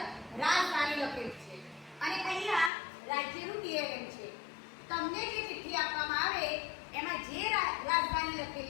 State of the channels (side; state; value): right; drops out; at 2.7 s